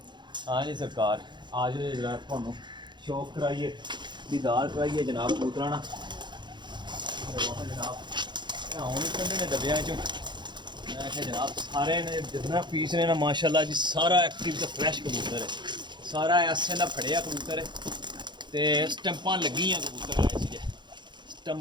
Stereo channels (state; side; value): late; left; 0.22 ms